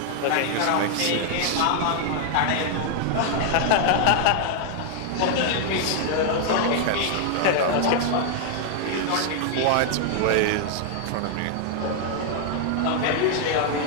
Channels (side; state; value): both; different; correlation 0.00